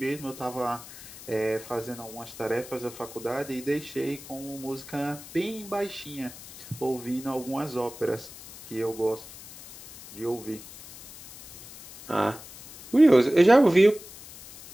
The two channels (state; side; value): noise; left; hiss, 16 dB below the sound